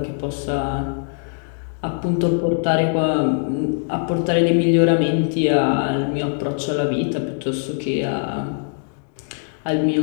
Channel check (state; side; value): silent; right; digital silence